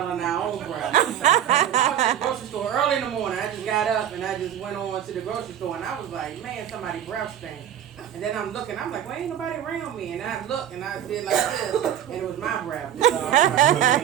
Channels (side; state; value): left; quieter; 10.3 dB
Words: our own breath. I was at the grocery store early in the morning. I just got up and I just went on to the grocery store, and I was like, man, somebody's breath stink. And then I'm looking, I'm like, well, ain't nobody around me. And I looked and I did like this, and it was my breath. So I was like,